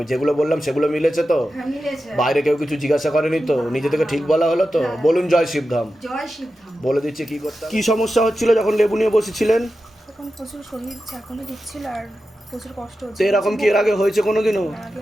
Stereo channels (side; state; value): both; normal; correlation 0.92